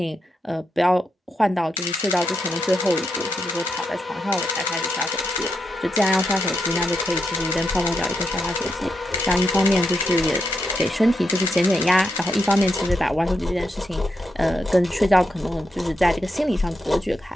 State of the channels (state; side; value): normal; both; correlation 0.83